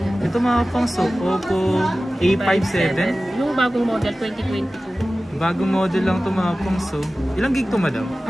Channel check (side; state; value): both; normal; correlation 0.96